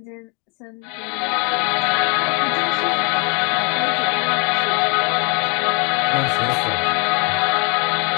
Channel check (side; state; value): right; quieter; 30.7 dB